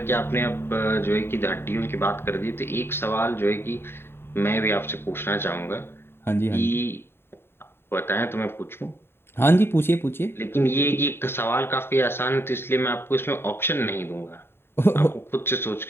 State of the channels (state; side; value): late; right; 0.11 ms